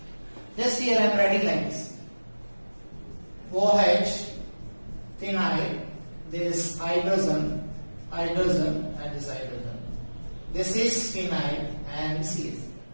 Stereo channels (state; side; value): inverted; both; correlation -1.00